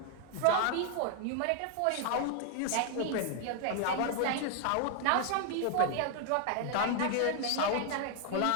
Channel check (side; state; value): both; different; correlation 0.00